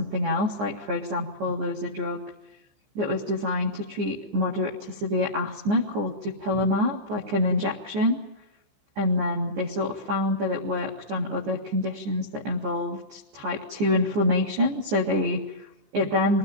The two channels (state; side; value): late; left; 14 ms